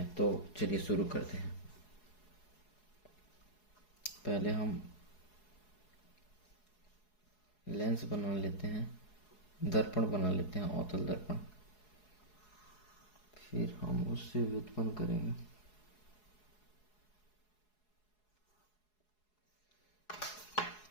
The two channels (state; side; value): late; right; 4.7 ms